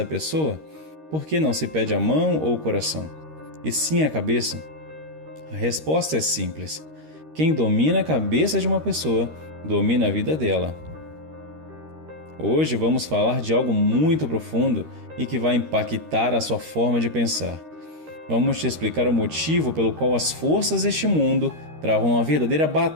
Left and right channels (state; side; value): late; left; 13 ms